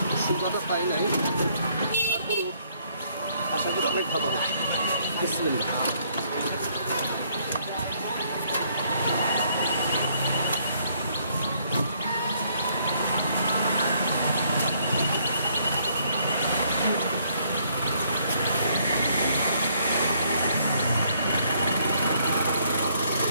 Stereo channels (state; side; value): inverted; both; correlation -0.68